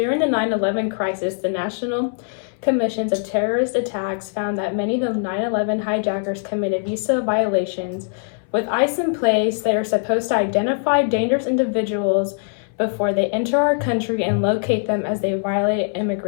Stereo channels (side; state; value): right; silent; 63 dB below the other